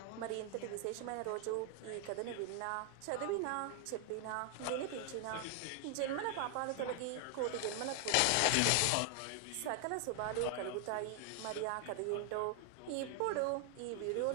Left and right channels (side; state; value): both; different; correlation 0.00